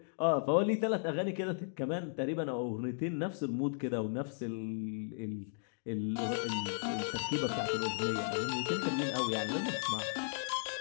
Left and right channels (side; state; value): right; silent; digital silence